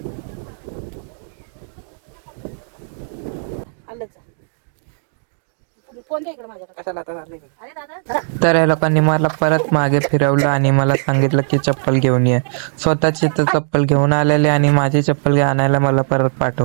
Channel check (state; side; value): silent; left; digital silence